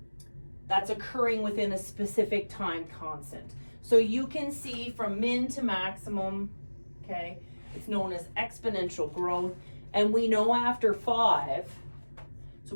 occurring within a specific time constant. So you can see from min to maximum, okay, it's known as exponential growth, and we know after 5, so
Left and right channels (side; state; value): both; inverted; correlation -1.00